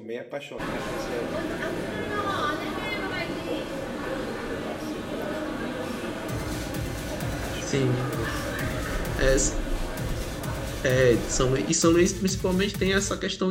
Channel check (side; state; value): both; identical; correlation 1.00